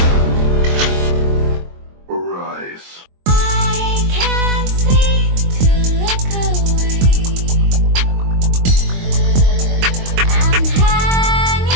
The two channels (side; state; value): left; late; 22 ms